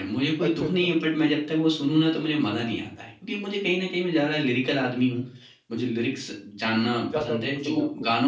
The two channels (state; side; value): identical; both; correlation 1.00